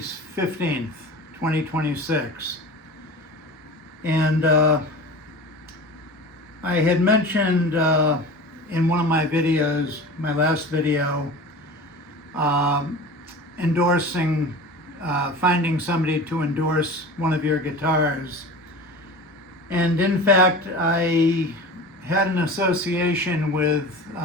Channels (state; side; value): normal; both; correlation 0.35